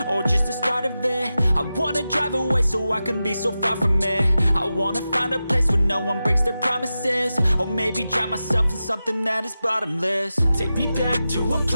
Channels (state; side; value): inverted; both; correlation -0.93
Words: or just the start of it? I wanna drive away so I can be so far from it. I wanna find a place where no one breaks their promises. Or maybe drown myself in something that is bottomless. Take me back to a